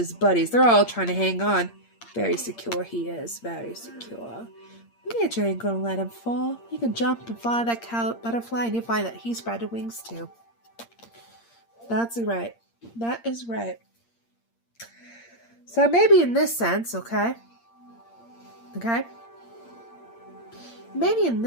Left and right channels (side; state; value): right; late; 8.6 ms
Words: buddies. They're all trying to hang on. Very secure he is. Very secure. Nature ain't going to let him fall. He can jump and fly that butterfly, and you'll find that he spread wings too. That's right. That is right. So maybe in this sense, okay? Maybe in